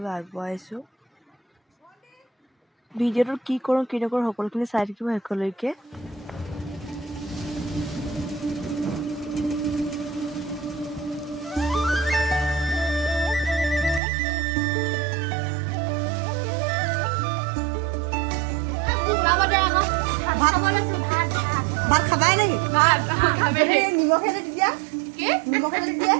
আগবঢ়াইছোঁ। ভিডিঅ'টোত কি কৰোঁ কি নকৰোঁ সকলোখিনি চাই থাকিব শেষলৈকে। ভাত খাবাই নেকি? নিমখে দিয়া নিমখে দিয়া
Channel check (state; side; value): drops out; left; at 14.0 s